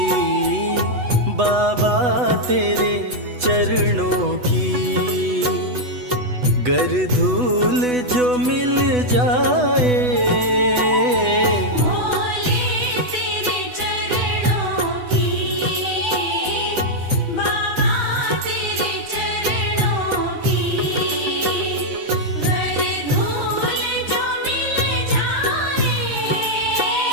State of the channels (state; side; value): late; left; 8.1 ms